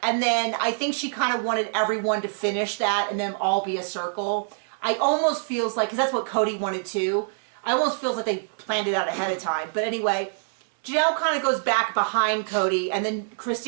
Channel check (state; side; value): silent; left; 62 dB below the other